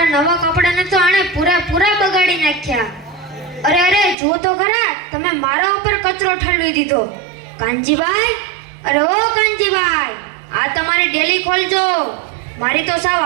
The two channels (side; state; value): left; drops out; at 4.2 s